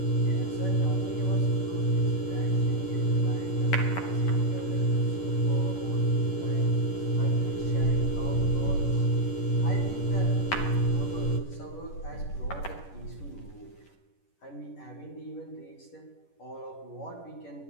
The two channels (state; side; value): late; right; 11 ms